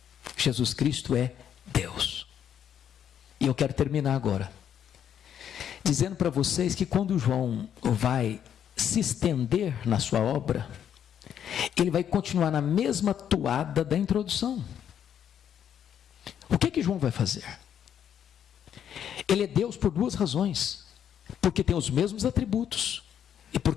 Jesus Cristo é Deus. E eu quero terminar agora dizendo para vocês que quando João vai se estender na sua obra, ele vai continuar na mesma toada da introdução. O que João vai fazer? Ele é Deus por duas razões: porque tem os mesmos atributos e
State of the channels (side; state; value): right; quieter; 9.2 dB